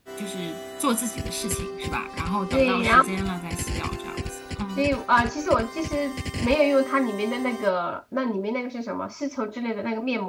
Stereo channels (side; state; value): both; identical; correlation 1.00